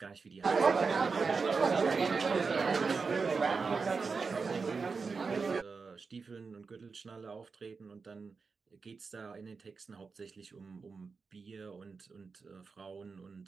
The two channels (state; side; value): quieter; left; 4.8 dB